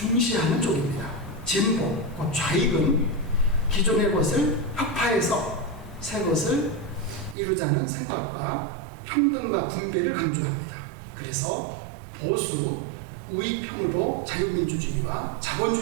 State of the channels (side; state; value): left; drops out; at 7.4 s